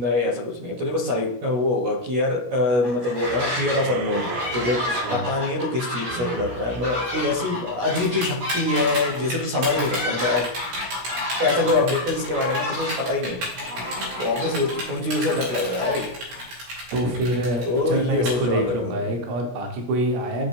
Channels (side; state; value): left; late; 17 ms